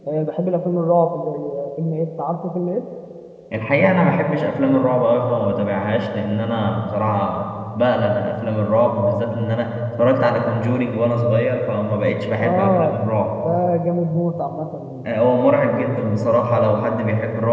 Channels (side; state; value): both; identical; correlation 1.00